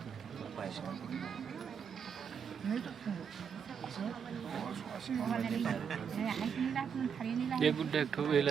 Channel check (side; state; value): left; quieter; 7.0 dB